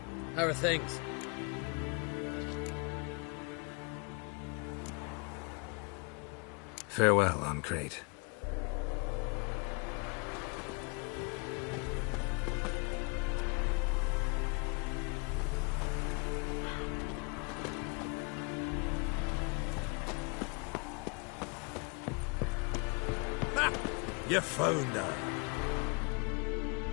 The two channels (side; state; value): right; quieter; 32.1 dB